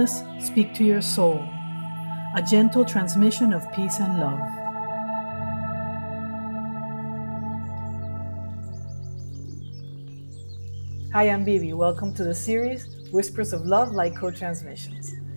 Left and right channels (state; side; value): inverted; both; correlation -1.00